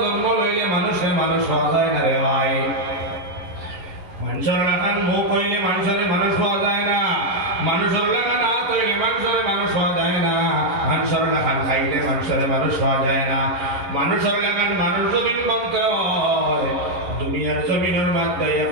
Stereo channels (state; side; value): late; left; 11 ms